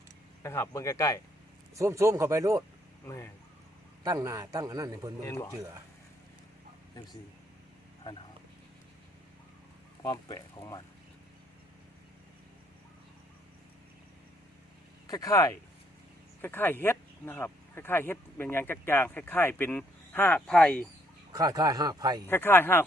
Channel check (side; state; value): both; normal; correlation 0.69